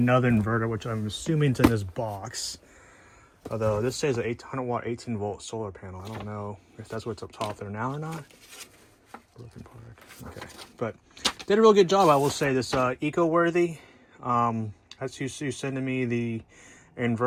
inverter, which I'm assuming is in this box. Although this says an 800 watt, 18 volt solar panel. I don't know if that's what's up top there now or not. Broken Park. Okay, but did a real good job, I will say. This EcoWorthy. That's you sending me the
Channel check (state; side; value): identical; both; correlation 1.00